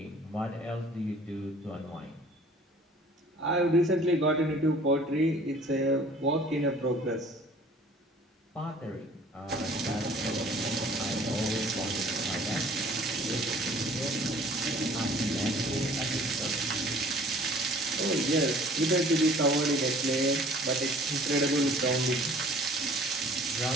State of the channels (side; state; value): both; normal; correlation 0.51